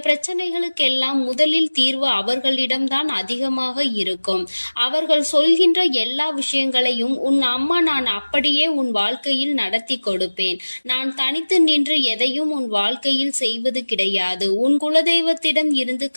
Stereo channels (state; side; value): inverted; both; correlation -1.00